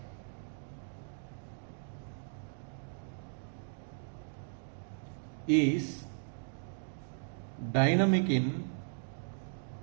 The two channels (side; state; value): left; silent; digital silence